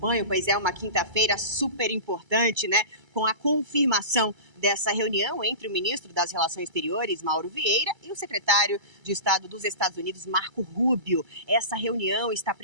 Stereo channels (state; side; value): late; left; 2.3 ms